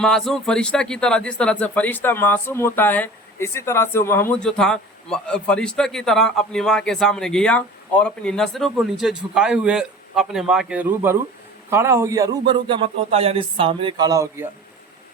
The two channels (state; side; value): normal; both; correlation 0.39